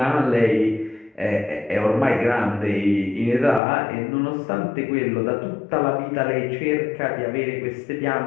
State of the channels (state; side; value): drops out; right; at 3.6 s